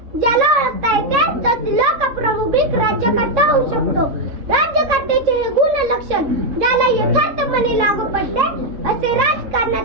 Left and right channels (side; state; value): left; late; 3.6 ms